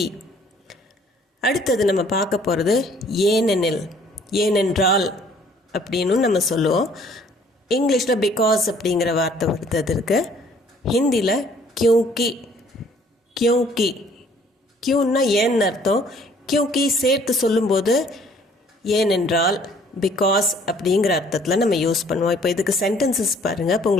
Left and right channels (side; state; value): both; normal; correlation 0.58